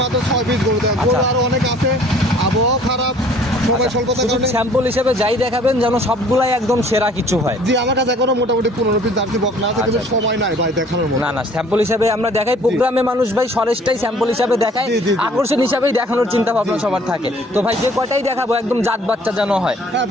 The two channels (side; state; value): both; normal; correlation 0.54